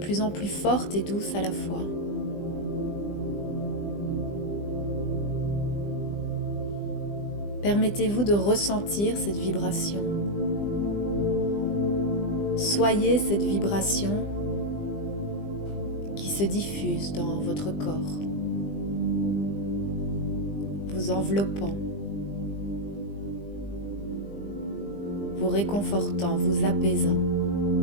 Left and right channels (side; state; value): right; late; 20 ms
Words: en plus forte et douce à la fois. Permettez-vous de ressentir cette vibration. Soyez cette vibration qui se diffuse dans votre corps, vous enveloppant, vous réconfortant, vous apaisant.